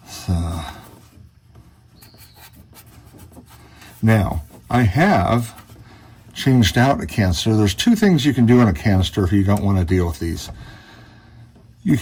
So, now, I have changed out a canister. There's 2 things you can do on a canister if you don't want to deal with these. You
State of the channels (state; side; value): identical; both; correlation 1.00